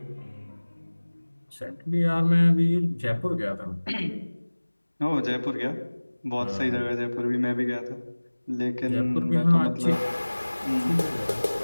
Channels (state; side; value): inverted; both; correlation -1.00